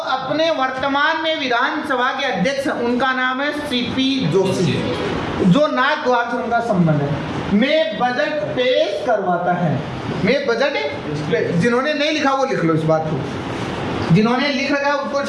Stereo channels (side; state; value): both; identical; correlation 1.00